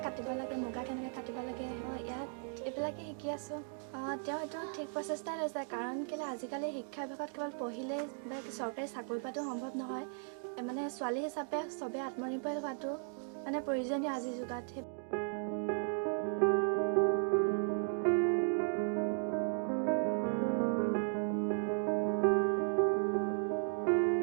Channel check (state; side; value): silent; left; 54 dB below the other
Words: কাটিব লাগে, মুগা কেনেকৈ কাটিব লাগে, ইয়াত এইবিলাকে শিকি আছোঁ। তেওঁ এইটো ঠিক প্ৰচেষ্টাই লৈছে, কাৰণ কেলৈ আজিকালি শিক্ষা বিভাগত কেৱল পঢ়িলেই বা চৰকাৰী চাকৰি পোৱাটো সম্ভৱ নহয়। মানে ছোৱালী হিচাপে চবেই আত্মনিৰ্ভৰ হোৱাটো মানে প্ৰয়োজনীয় আজিৰ যুগত।